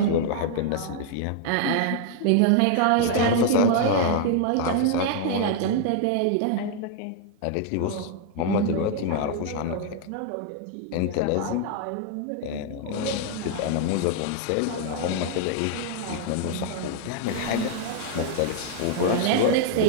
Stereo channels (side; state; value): both; different; correlation 0.00